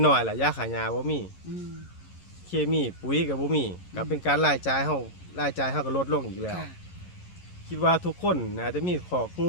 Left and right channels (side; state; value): right; late; 11 ms